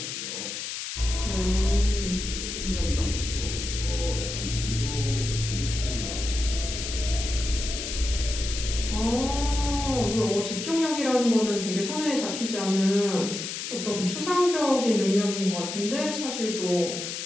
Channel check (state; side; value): noise; left; hiss, 6 dB below the sound